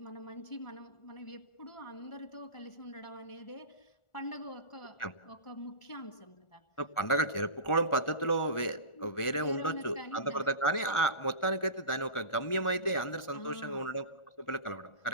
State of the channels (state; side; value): late; right; 1.4 ms